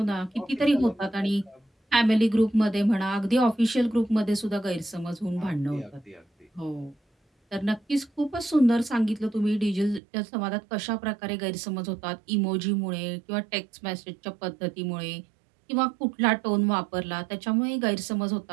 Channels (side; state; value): left; drops out; at 10.0 s